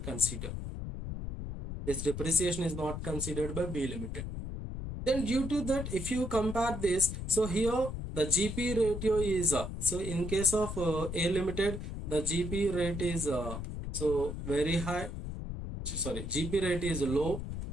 considered. This depreciation is not considered by B limited. Then due to that, if you compare this, so here the GP ratio is so in case of A limited, the GP rate is so very high. Sorry, GP rate is low,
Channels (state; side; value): noise; left; rumble, 6 dB below the sound